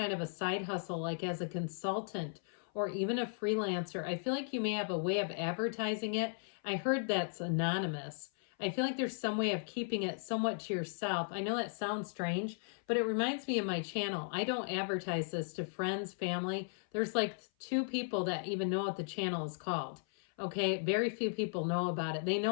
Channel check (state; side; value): silent; right; 54 dB below the other